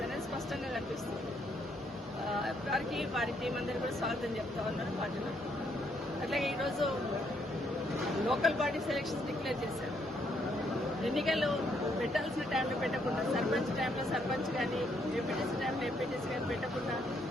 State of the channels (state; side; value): normal; both; correlation 0.72